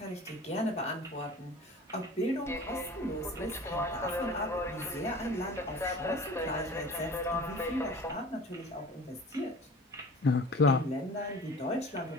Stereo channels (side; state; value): both; normal; correlation 0.42